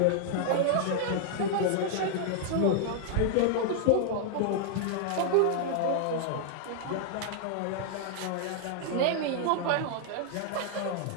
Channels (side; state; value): both; different; correlation -0.01